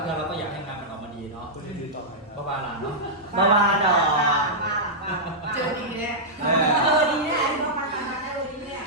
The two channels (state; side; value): normal; both; correlation -0.09